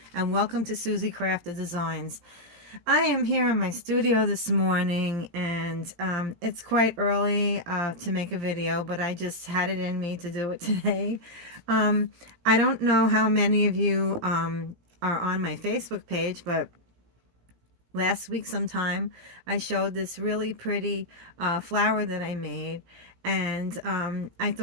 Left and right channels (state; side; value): late; left; 17 ms